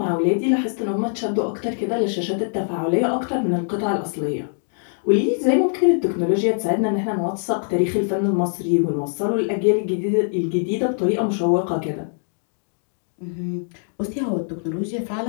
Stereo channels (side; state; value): right; silent; digital silence